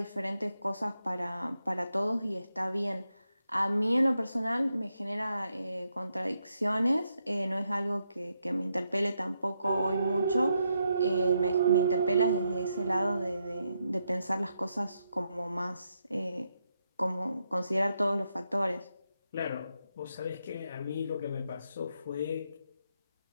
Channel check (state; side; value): inverted; both; correlation -0.81